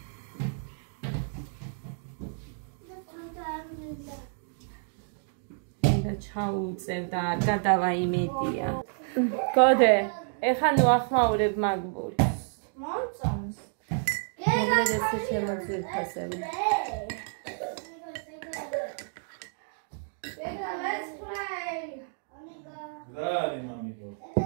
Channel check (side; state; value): left; silent; 58 dB below the other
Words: ჩაუწევ და არ გადავა იმედია. გოდე, ეხა ნუ ახმაურებ მაგბურს. მომწონს. მოგლედეს შემოძირფასები. Let's play. რა არის მამიკო?